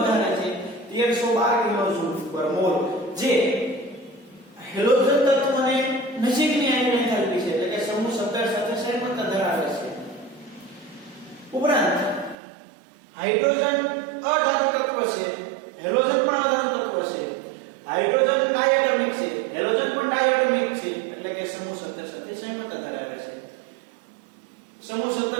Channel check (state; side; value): drops out; left; at 12.4 s